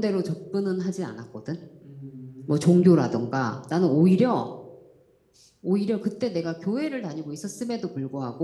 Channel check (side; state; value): both; identical; correlation 1.00